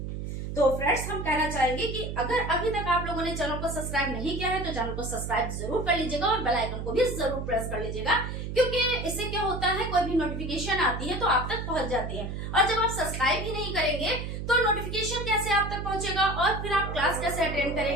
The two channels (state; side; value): noise; right; hum, 5 dB below the sound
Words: तो फ्रेंड्स, हम कहना चाहेंगे कि अगर अभी तक आप लोगों ने चैनल को सब्सक्राइब नहीं किया है तो चैनल को सब्सक्राइब जरूर कर लीजिएगा, और बेल आइकन को भी जरूर प्रेस कर लीजिएगा, क्योंकि इससे क्या होता है कोई भी नोटिफिकेशन आती है तो आप तक पहुंच जाती है। और जब आप सब्सक्राइब ही नहीं करेंगे तो नोटिफिकेशन कैसे आप तक पहुंचेगा, और फिर आप क्लास कैसे अटेंड